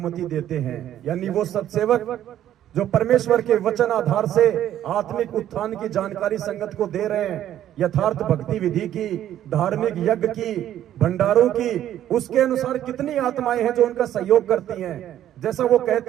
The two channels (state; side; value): quieter; left; 11.6 dB